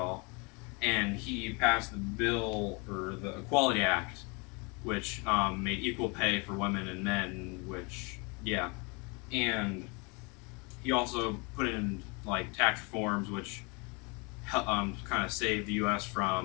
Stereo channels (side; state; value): right; quieter; 30.6 dB